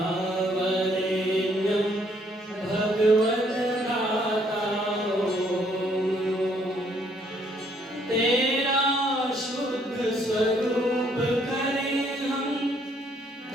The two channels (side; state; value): both; normal; correlation 0.67